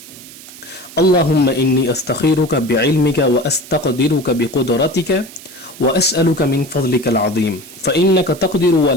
اللہم انی استخیرک بعلمک واستقدرک بقدرتک واسألک من فضلک العظیم فإنک تقدر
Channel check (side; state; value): right; noise; hiss, 18 dB below the sound